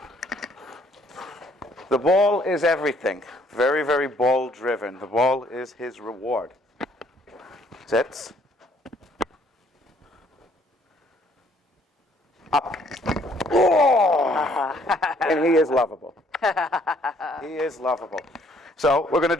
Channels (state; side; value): normal; both; correlation 0.64